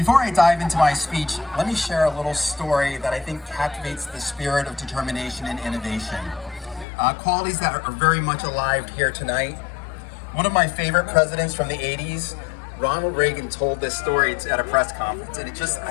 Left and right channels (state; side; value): drops out; right; at 6.9 s